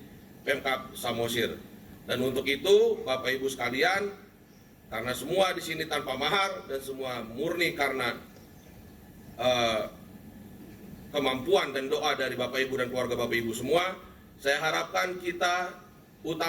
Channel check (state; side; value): identical; both; correlation 1.00